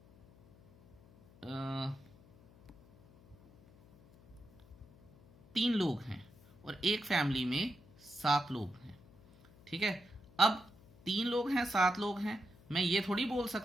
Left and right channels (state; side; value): noise; left; hum, 25 dB below the sound